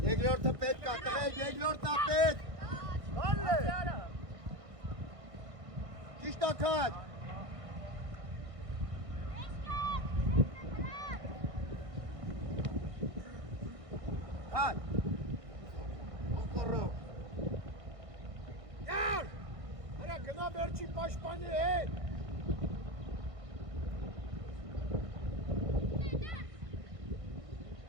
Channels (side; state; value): left; late; 1.6 ms